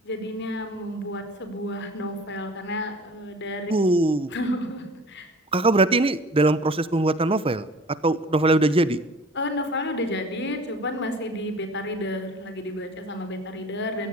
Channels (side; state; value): both; normal; correlation 0.45